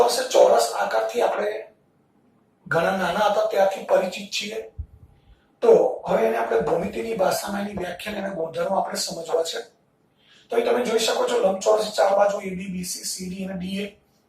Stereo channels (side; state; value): both; identical; correlation 1.00